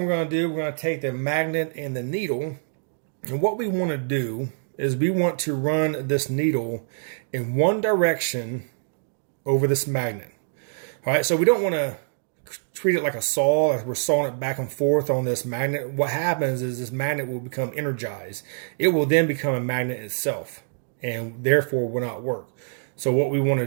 we're going to do, we're going to take the magnet and the needle, and what we want to do is we want to run this needle in one direction over this magnet. All right, so we don't want to treat it like a saw, like we're sawing it back and forth on this magnet. What happens is this magnet will become energized. It will then become a magnet itself, and therefore will not work. So what we want to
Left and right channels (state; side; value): silent; left; digital silence